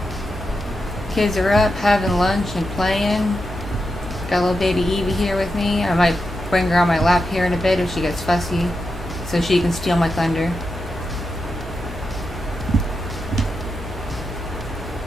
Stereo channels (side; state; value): both; normal; correlation 0.87